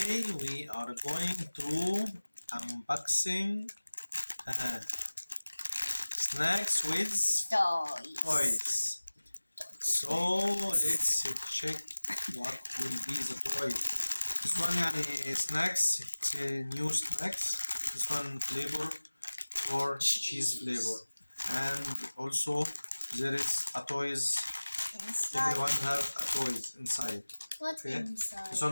we are going to unboxing snacks with toys. So let's check what will be the toy. This one snacks, it's a new snacks. This one flavor or cheese flavor, and also there is a toys. Inside. Everyone have a toys inside. What Okay. inside? This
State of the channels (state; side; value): inverted; both; correlation -1.00